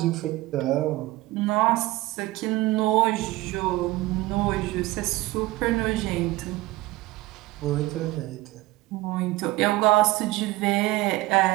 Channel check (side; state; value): left; quieter; 18.9 dB